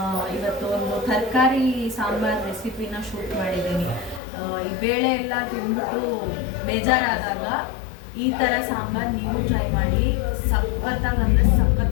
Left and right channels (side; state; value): right; drops out; at 4.2 s